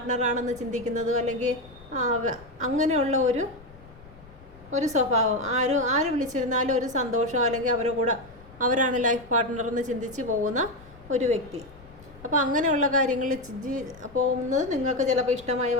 ചിന്തിക്കുന്നതും അല്ലെങ്കിൽ അങ്ങനെയുള്ള ഒരു സ്വഭാവം. ആര് വിളിച്ചിരുന്നാലും ഒരു സന്തോഷം, അല്ലെങ്കിൽ അവരുടെ കൂടെ അവരാണ് ലൈഫ് പാർട്ട്ണർ എന്ന് ചിന്തിച്ച് പോകുന്ന ഒരു വ്യക്തി. അപ്പോൾ അങ്ങനെയുള്ള കാര്യങ്ങളിൽ പോകുന്നത് നിങ്ങൾക്ക് ചിലപ്പോൾ ഇഷ്ടമായി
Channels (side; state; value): left; noise; rumble, 21 dB below the sound